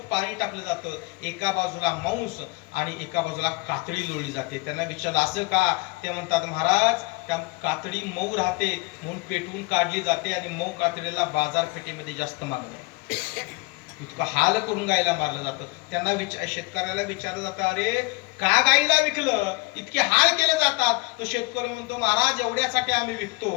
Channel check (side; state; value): right; quieter; 25.4 dB